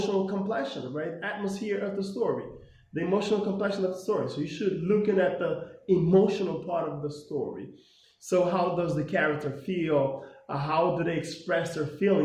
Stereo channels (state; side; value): identical; both; correlation 1.00